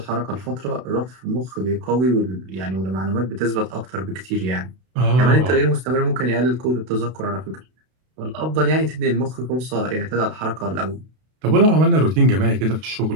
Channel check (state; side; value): late; left; 32 ms